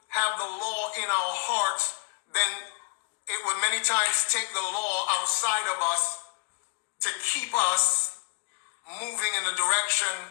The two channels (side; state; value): right; quieter; 31.8 dB